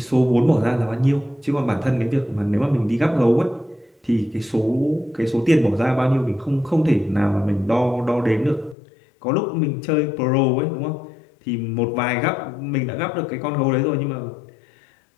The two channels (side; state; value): right; drops out; at 8.8 s